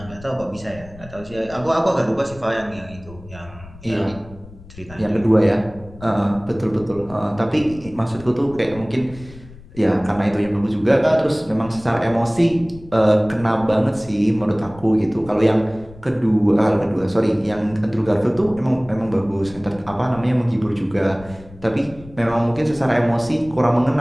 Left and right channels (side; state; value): left; noise; rumble, 19 dB below the sound